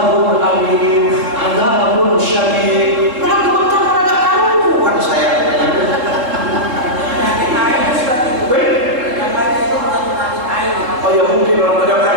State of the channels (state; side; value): late; left; 3.8 ms